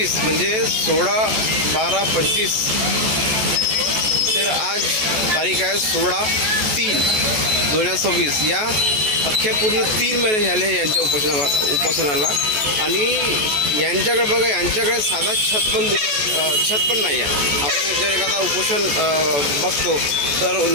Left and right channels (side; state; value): left; late; 14 ms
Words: म्हणजे 16/12/25 तर आज तारीख आहे 16/3/2026. या अख्ख्या पूर्ण 3 महिने झाले यांच्या उपोषणाला आणि यांच्याकडे बघा, यांच्याकडे साधा छत पण नाही आहे. आपण जर एखादा उपोषण बघतो तर